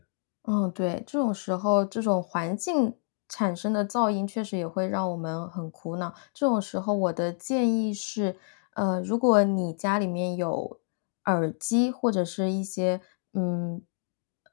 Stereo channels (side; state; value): right; silent; digital silence